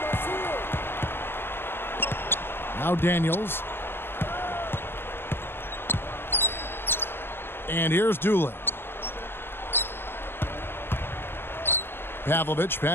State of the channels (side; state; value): right; late; 0.11 ms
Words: Now Daniels. And here's Doolin. Pavlovich